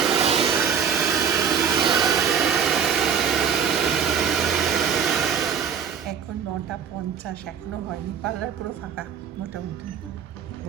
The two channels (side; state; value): left; quieter; 7.4 dB